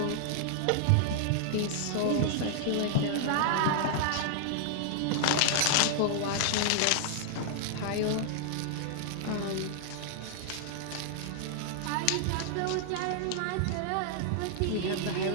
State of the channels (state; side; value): different; both; correlation -0.01